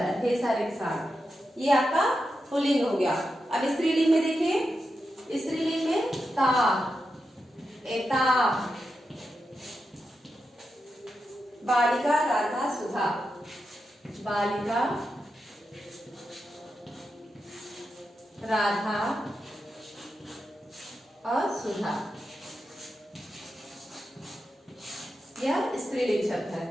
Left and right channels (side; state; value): both; normal; correlation 0.88